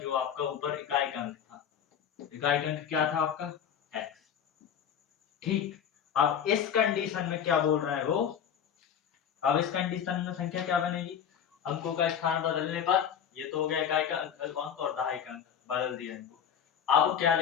आपका ऊपर इकाई का अंक था, इकाई का अंक क्या था आपका x। ठीक, अब इस कंडीशन में क्या बोल रहे हैं वो, अब इस कंडीशन में संख्या क्या बनेगी, अंकों का स्थान बदलने पर, ये तो हो गया इकाई का अंक और दहाई का अंक बदल दिया इनको। अब क्या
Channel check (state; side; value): quieter; right; 8.4 dB